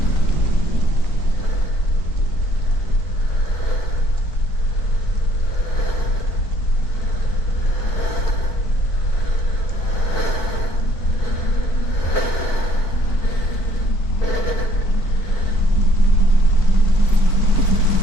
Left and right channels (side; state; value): right; late; 4.5 ms